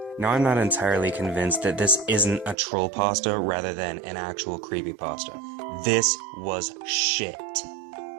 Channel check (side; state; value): left; drops out; at 2.6 s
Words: Now I'm not entirely convinced that this isn't a troll pasta rather than an actual creepypasta. This was shit.